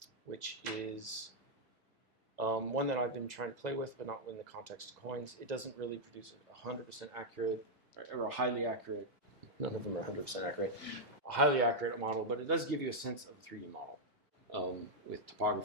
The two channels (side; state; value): both; normal; correlation -0.04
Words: which is One that I've been trying to play with, but not in the context of coins. It doesn't really produce a 100% accurate or a highly accurate. None of them are 100% accurate. A highly accurate model, but it does give you a sense of a 3D model with